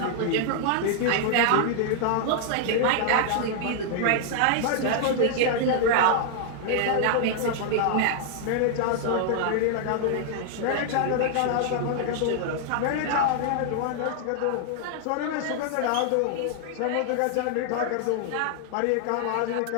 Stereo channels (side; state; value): both; different; correlation -0.01